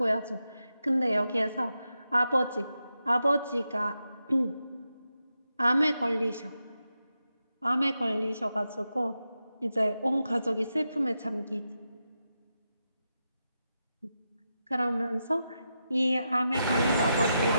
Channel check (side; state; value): both; inverted; correlation -0.87